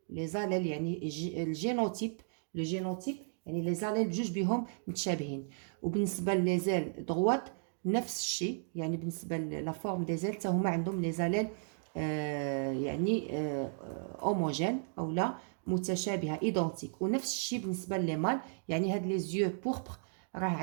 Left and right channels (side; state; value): left; silent; digital silence